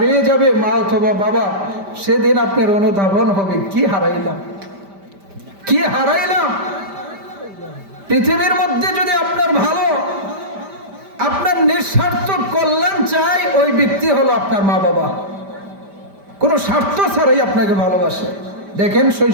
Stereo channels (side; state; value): left; late; 5.1 ms